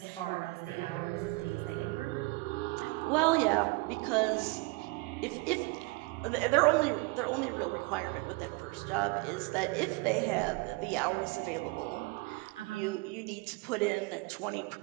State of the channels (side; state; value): left; quieter; 25.9 dB